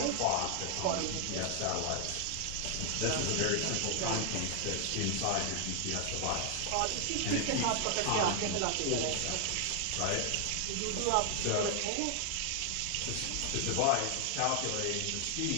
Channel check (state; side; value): different; both; correlation 0.00